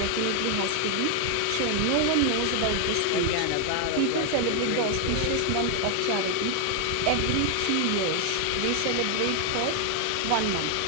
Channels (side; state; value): both; different; correlation 0.01